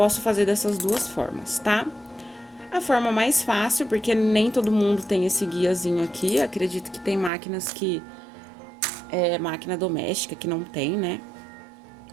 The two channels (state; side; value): drops out; left; at 7.3 s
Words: fazer dessas duas formas, tá? A forma mais fácil, porque nem todo mundo tem esse guiazinho aqui. Acredito que tem máquinas que... máquina doméstica que não tem, né?